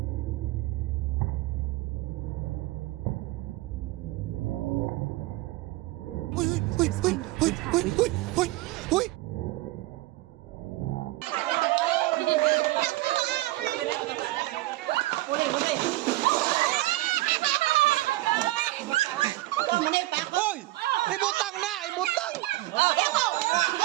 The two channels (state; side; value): quieter; left; 18.6 dB